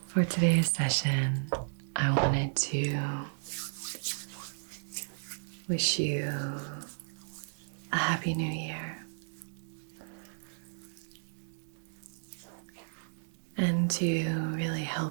For today's session, I wanted to wish you a happy new year and to really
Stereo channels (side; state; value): left; silent; digital silence